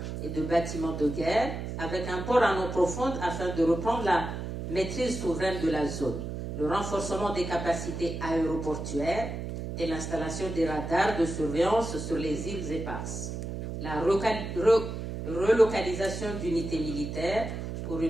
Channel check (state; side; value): noise; right; hum, 6 dB below the sound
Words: et de bâtiments de guerre avec un port en eau profonde afin de reprendre la maîtrise souveraine de la zone. Le renforcement des capacités aéroportuaires et l'installation des radars de surveillance sur les îles éparses. La relocalisation d'unités militaires pour